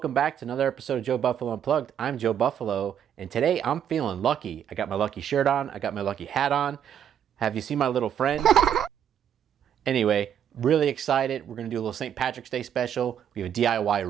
back to another episode of Joe Buffalo Unplugged. I'm Joe Buffalo, and today I'm feeling lucky. I got my lucky shirt on, I got my lucky hat on. Have you seen my little friend? Anyway, really excited. We're going to do a little St. Patrick's Day special. We have a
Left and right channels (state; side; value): quieter; left; 9.2 dB